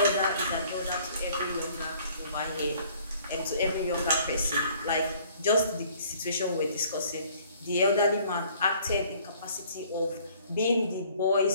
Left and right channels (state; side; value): inverted; both; correlation -0.57